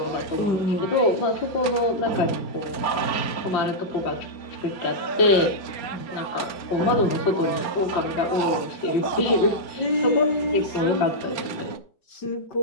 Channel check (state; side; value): late; right; 4.4 ms